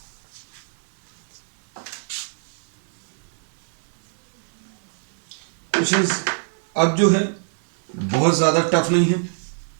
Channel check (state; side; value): silent; left; digital silence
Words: क्वेश्चंस अब जो है बहुत ज्यादा टफ नहीं है,